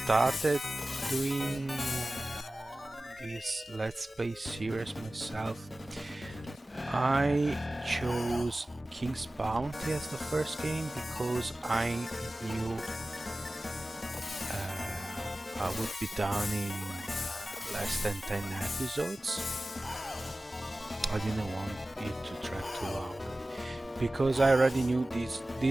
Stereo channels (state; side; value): normal; both; correlation 0.96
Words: doing this Let's Play series myself, I chose King's Bounty as the first game because I knew I would be done in less than 10 episodes. I didn't want it to drag too long because I already knew